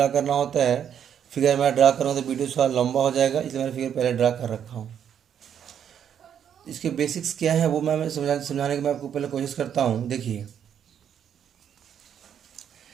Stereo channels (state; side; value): quieter; left; 8.8 dB